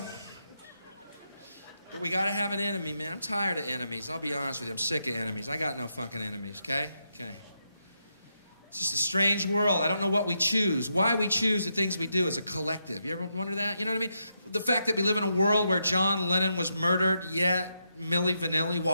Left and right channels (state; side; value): inverted; both; correlation -0.82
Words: But we gotta have an enemy, man. I'm tired of enemies. I'll be honest with you. I'm sick of enemies. I got no fucking enemies, okay? Okay. It's just a strange world. I don't know what we choose. Why we choose the things we do as a collective. You ever wonder that? You know what I mean? The fact that we live in a world where John Lennon was murdered, yet Milli Vanilli